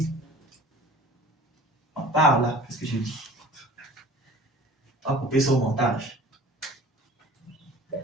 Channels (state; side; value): normal; both; correlation 0.45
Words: On parle là, qu'est-ce que je dis? On va couper ça au montage.